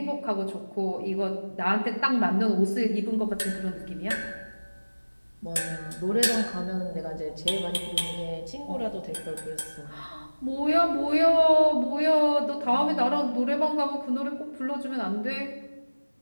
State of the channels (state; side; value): inverted; both; correlation -1.00